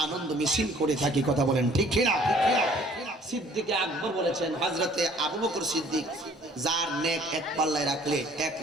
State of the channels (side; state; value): both; normal; correlation 0.56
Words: আনন্দ মিছিল করে থাকি। কথা বলেন ঠিক কিনা? সিদ্দিক আকবর বলেছেন, হযরতে আবু বকর সিদ্দিক, যার নেক এক পাল্লায় রাখলে এক